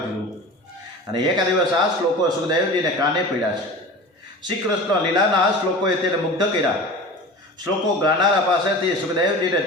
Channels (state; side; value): normal; both; correlation 0.35